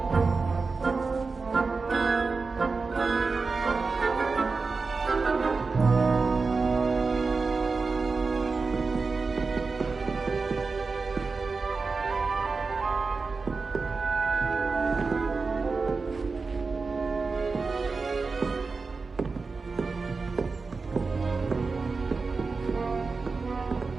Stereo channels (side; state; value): left; quieter; 4.3 dB